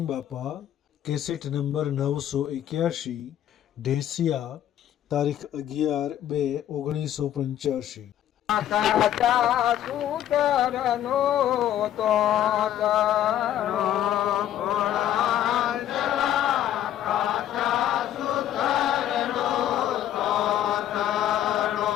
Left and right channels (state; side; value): quieter; right; 11.4 dB